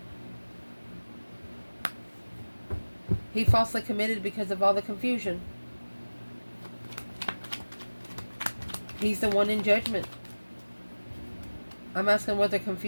He falsely committed because of all the confusion. He's the one in judgment. I'm asking where the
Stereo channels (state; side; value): inverted; both; correlation -1.00